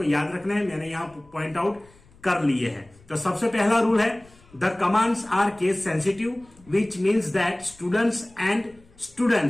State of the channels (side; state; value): left; noise; rumble, 27 dB below the sound